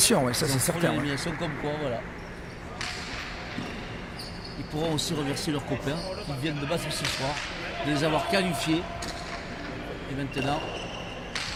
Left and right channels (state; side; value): identical; both; correlation 1.00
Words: ouais, ça c'est certain. L'élimination comme quoi, voilà. Ils pourront aussi remercier leurs copains qui viennent de battre ce soir, de les avoir qualifiés. Et maintenant,